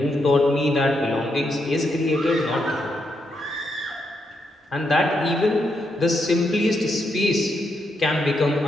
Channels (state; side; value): normal; both; correlation 0.80